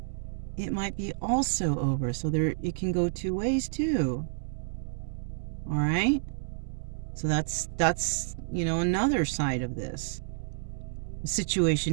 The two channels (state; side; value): silent; left; digital silence